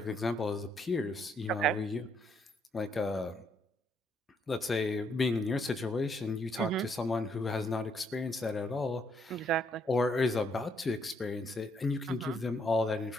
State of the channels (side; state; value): both; normal; correlation 0.72